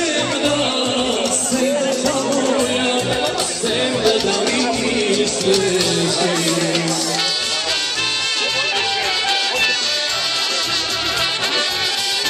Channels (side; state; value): both; identical; correlation 1.00